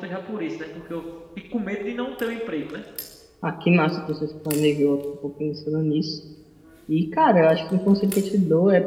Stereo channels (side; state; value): both; identical; correlation 1.00